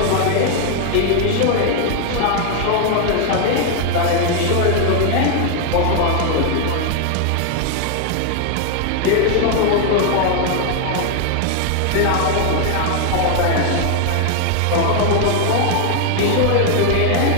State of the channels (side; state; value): both; different; correlation 0.00